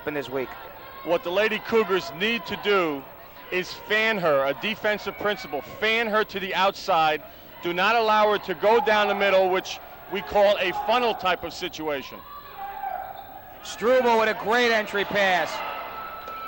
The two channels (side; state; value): left; noise; rumble, 26 dB below the sound